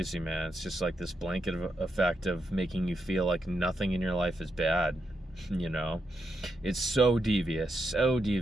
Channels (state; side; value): normal; both; correlation 0.84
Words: man. It's just like this blanket effect of making you feel like nothing in your life is bad. You know, it's so devious,